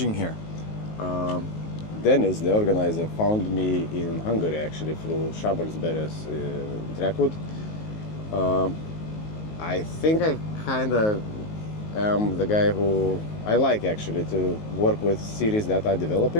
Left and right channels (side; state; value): right; late; 19 ms